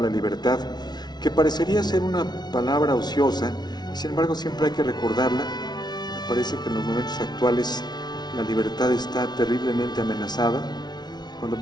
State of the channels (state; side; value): late; right; 0.20 ms